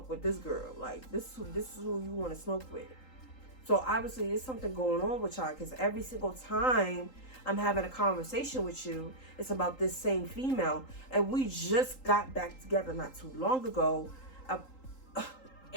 with this girl. Like, this is who you want to smoke with. So, obviously, there's something going on with y'all. Because every single time I'm having a conversation with you, it's about this same female. And we just got back together not too long ago.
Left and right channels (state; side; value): late; right; 3.8 ms